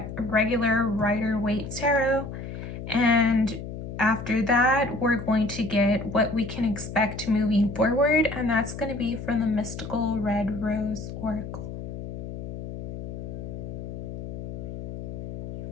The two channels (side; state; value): left; noise; hum, 8 dB below the sound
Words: regular Rider-Waite Tarot, and after that we're going to get what we can expect moving forward, and that's going to be from the Mystical Red Rose Oracle.